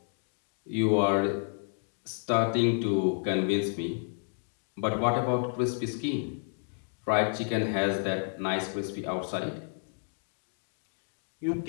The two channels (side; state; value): right; silent; 57 dB below the other